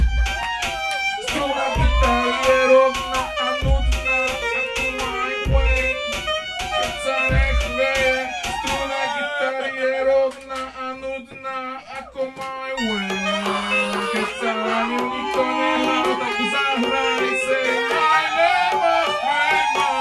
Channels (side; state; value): both; identical; correlation 1.00